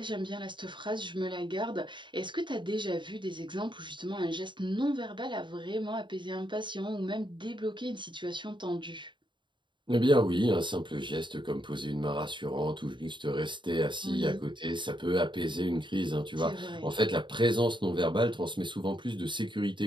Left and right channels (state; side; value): late; left; 0.23 ms